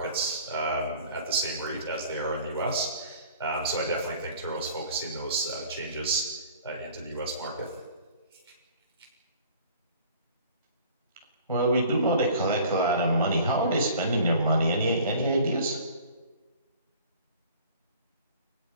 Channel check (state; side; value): inverted; both; correlation -0.49